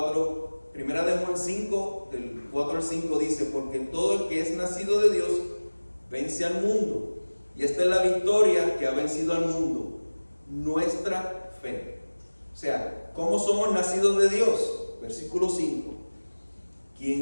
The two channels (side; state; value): both; inverted; correlation -1.00